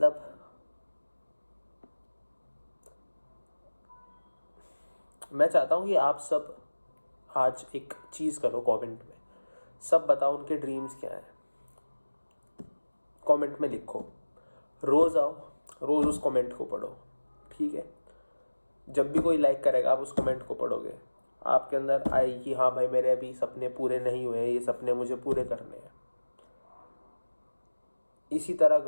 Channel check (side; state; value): both; inverted; correlation -1.00